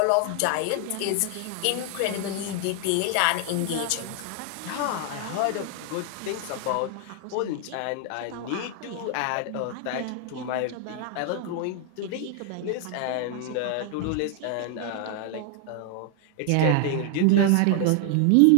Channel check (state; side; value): different; both; correlation 0.00